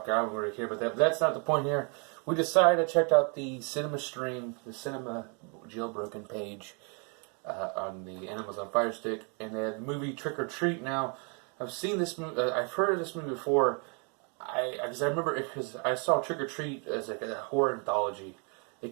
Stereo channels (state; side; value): quieter; left; 37.1 dB